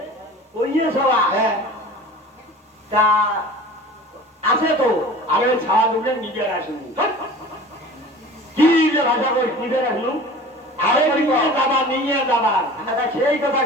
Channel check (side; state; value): both; normal; correlation 0.40